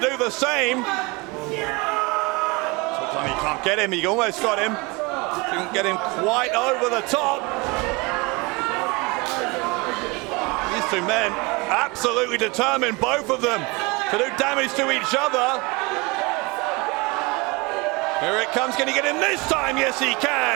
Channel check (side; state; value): left; quieter; 25.8 dB